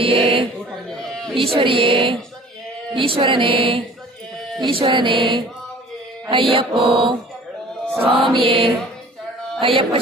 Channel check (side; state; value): both; normal; correlation 0.47